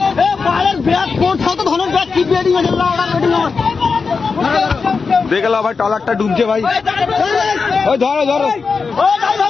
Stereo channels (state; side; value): quieter; right; 4.9 dB